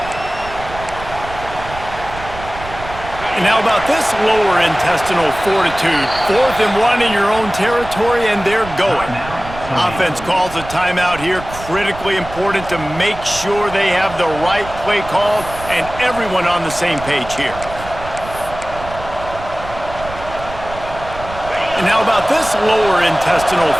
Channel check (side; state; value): right; noise; rumble, 13 dB below the sound